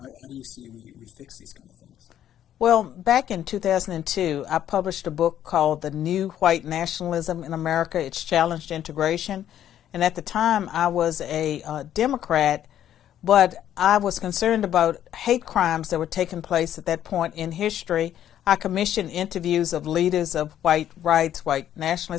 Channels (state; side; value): quieter; right; 10.9 dB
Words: How do you see we fix these kind of things? Well, back in 2002, I published a book called The New White Nationalism in America, Its Challenge to Integration. And at the time, I was a Democrat, but I was concerned about hate crimes that were taking place at that point in history. I commissioned interviews of leaders of white rights, white